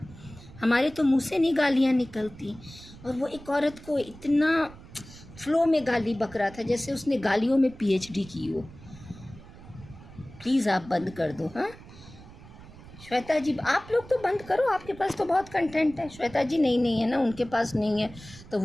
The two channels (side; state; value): right; noise; rumble, 18 dB below the sound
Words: हमारे तो मुंह से नहीं गालियाँ निकलती, और वो एक औरत को इतना फ्लो में गाली बक रहा था जैसे उसने गालियों में PhD की हो। प्लीज़ आप बंद कर दो। हाँ श्वेता जी, आप लोग तो बंद करो, आपके पास तो बहुत कंटेंट है। श्वेता जी नहीं है ना, उनके पास नहीं है, तो